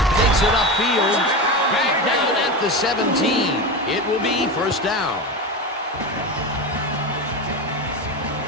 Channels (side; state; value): both; normal; correlation 0.21